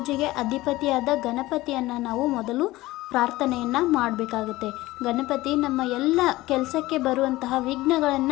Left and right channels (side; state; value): right; quieter; 18.2 dB